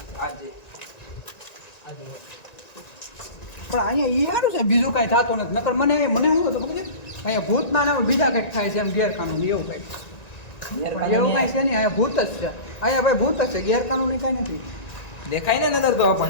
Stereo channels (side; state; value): right; late; 1.9 ms